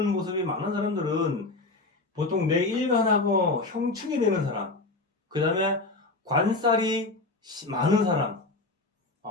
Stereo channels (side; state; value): right; quieter; 3.2 dB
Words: 모습이 많은 사람들은 보통 내 일간하고 형충이 되는 사람, 그 다음에 관살이 많은 사람,